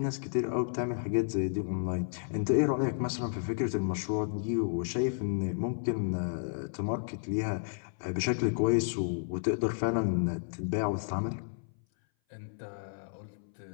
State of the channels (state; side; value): silent; right; 56 dB below the other